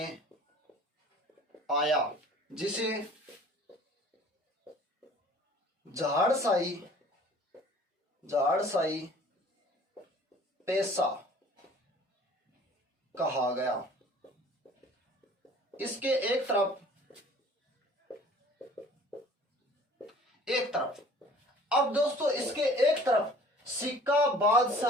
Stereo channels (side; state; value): both; normal; correlation 0.50